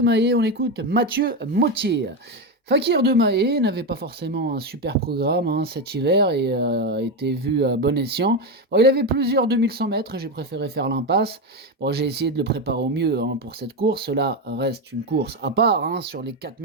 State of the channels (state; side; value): normal; both; correlation 0.12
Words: On écoute Mathieu Mottier. Fakir de Maé n'avait pas forcément un super programme cet hiver et était vu à bon escient. Il avait plusieurs 2100 mètres, j'ai préféré faire l'impasse. J'ai essayé de le préparer au mieux pour cette course. Cela reste une course à part sur les